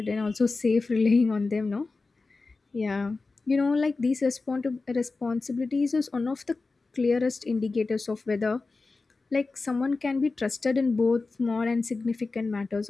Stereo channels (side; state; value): right; quieter; 3.8 dB